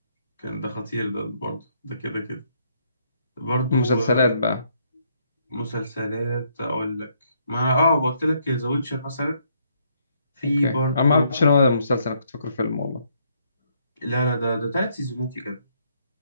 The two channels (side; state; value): both; inverted; correlation -0.71